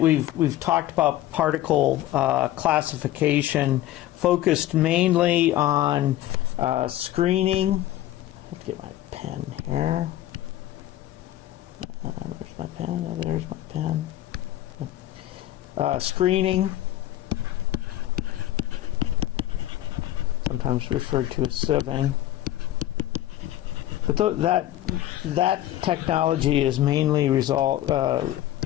we've talked about particle classification, focused mainly on screening. Let's get my pen here. Where's my pen? Oh, there's my pen. Screening, sometimes referred to as sieving. But that technology is mainly reserved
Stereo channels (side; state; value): right; quieter; 14.1 dB